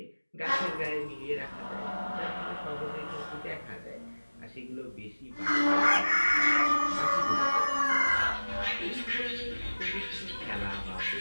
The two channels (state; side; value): inverted; both; correlation -1.00